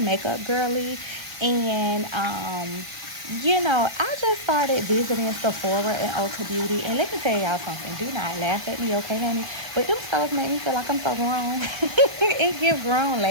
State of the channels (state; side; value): late; left; 1.2 ms